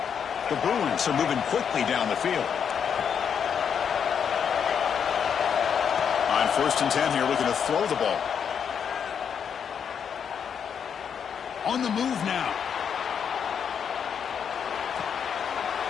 The Bruins are moving quickly down the field. On First and 10 here, looking to throw the ball. On the move now.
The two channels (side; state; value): right; quieter; 7.5 dB